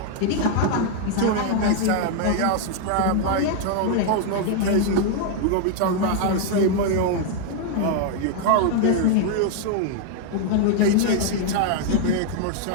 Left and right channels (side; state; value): both; different; correlation 0.00